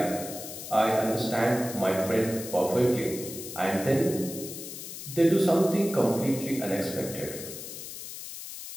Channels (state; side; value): noise; left; hiss, 10 dB below the sound